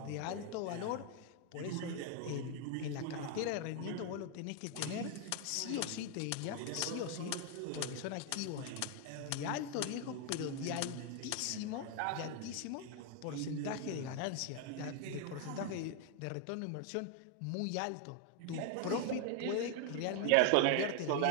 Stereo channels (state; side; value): different; both; correlation 0.01